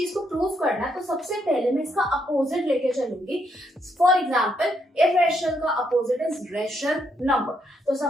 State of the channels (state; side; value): normal; both; correlation 0.75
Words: को प्रूव करना है तो सबसे पहले मैं इसका अपोजिट लेके चलूंगी. फॉर एग्जांपल इरेशनल का अपोजिट इज रेशनल नंबर. तो